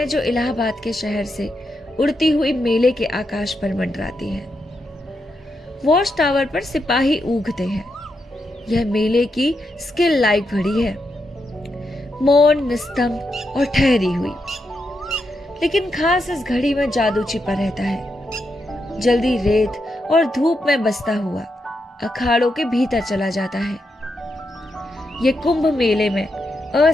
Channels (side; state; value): both; normal; correlation 0.84